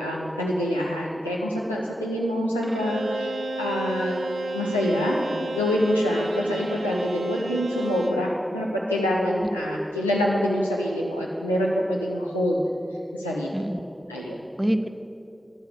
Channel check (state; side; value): normal; both; correlation 0.84